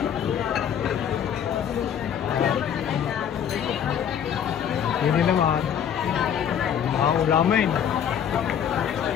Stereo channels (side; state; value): right; quieter; 8.8 dB